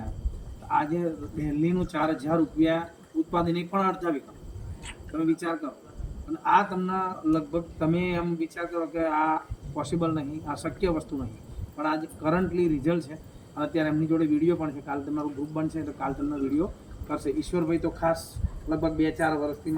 આવ્યો. તો આજે દિલ્હીનું 4000 રૂપિયા ઉત્પાદન એ પણ અડધા વીઘા. તમે વિચાર કરો અને આ તમને લગભગ તમે એમ વિચાર કરો કે આ પોસિબલ નહીં, આ શક્ય વસ્તુ નહીં, પણ આજે કરન્ટલી રિઝલ્ટ છે. અત્યારે એમની જોડે વિડીયો પણ છે. કાલે તમારું ગ્રુપ બનશે તો કાલે તમને વિડીયો કરશે. ઈશ્વરભાઈ તો ખાસ લગભગ 2-4 વર્ષથી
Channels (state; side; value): identical; both; correlation 1.00